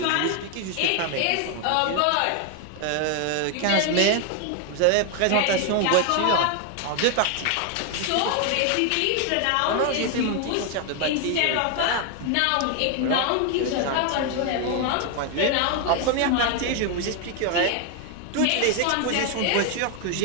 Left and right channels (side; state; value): both; different; correlation 0.01